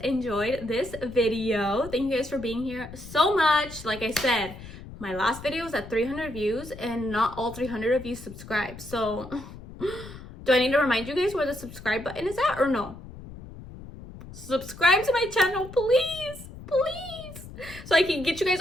enjoyed this video. Thank you guys for being here so much. Like I said, my last video was at 300 views and not all 300 of you subscribed. So do I need to remind you guys where the subscribe button is at or no? Subscribe to my channel, please, please, so I can get you guys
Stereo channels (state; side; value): noise; left; rumble, 15 dB below the sound